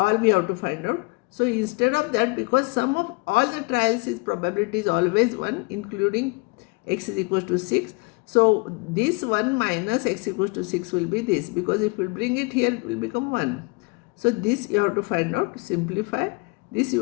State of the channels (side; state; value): right; quieter; 29.2 dB